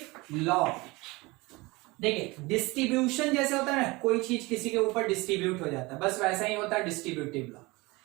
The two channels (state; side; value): quieter; left; 23.5 dB